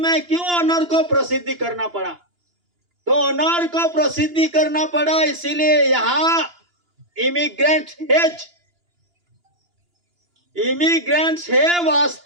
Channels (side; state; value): left; late; 2.9 ms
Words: क्यों ऑनर को प्रसिद्धि करना पड़ा? तो ऑनर को प्रसिद्धि करना पड़ा इसीलिए यहाँ इमिग्रेंट्स है